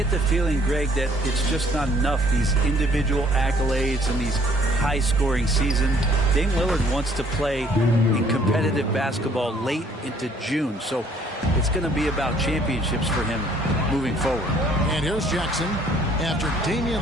the feeling, Greg, that it's just not enough, these individual accolades and these high-scoring seasons. Dame Lillard wants to play in competitive basketball late into June. So it's going to be about championships for him moving forward. And here's Jackson after Damian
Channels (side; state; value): both; normal; correlation 0.61